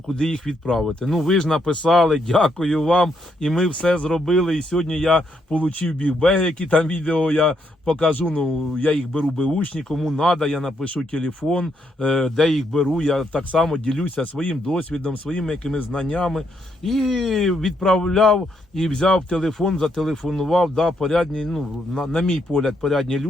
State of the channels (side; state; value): both; normal; correlation 0.76